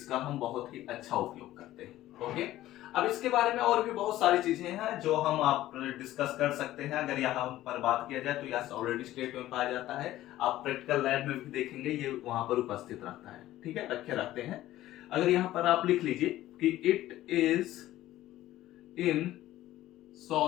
हम बहुत ही अच्छा उपयोग करते हैं। ओके, अब इसके बारे में और भी बहुत सारी चीजें हैं जो हम आप डिस्कस कर सकते हैं। अगर यहाँ पर बात किया जाए तो यह ऑलरेडी स्टेट में पाया जाता है, आप प्रैक्टिकल लैब में भी देखेंगे ये वहां पर उपस्थित रहता है। ठीक है, रखे रहते हैं। अगर यहाँ पर आप लिख लीजिए कि it is in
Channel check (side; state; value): right; quieter; 14.7 dB